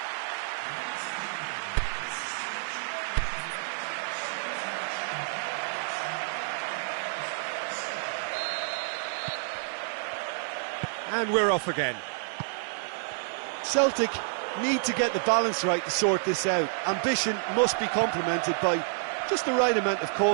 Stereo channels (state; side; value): silent; left; digital silence